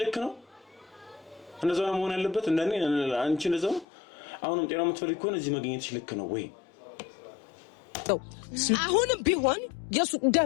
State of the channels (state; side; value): drops out; right; at 3.9 s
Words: ልክ ነው? እንደዛ ነው መሆን ያለበት እንደኔ አንቺ እንደዛ አሁንም ጤናው የምትፈልጊ ከሆነ እዚህ መገኘትሽ ልክ ነው ወይ? አሁንም ቢሆን የሱ